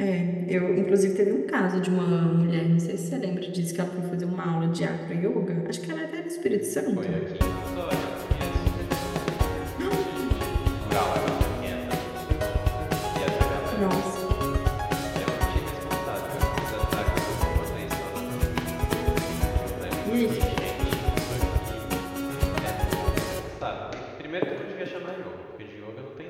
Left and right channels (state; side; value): identical; both; correlation 1.00